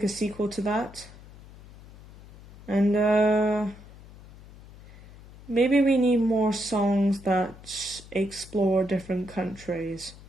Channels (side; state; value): left; noise; hum, 20 dB below the sound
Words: a sequel to that. And, maybe we need more songs that explore different countries.